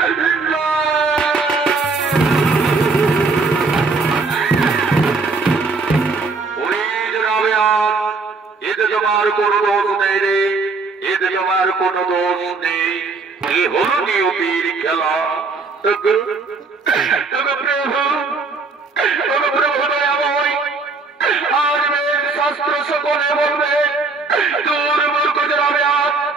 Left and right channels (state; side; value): quieter; left; 4.1 dB